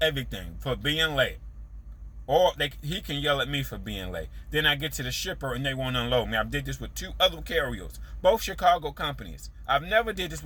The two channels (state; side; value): identical; both; correlation 1.00